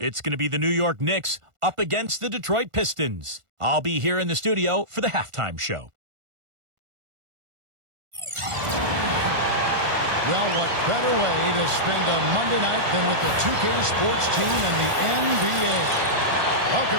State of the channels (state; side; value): late; left; 1.5 ms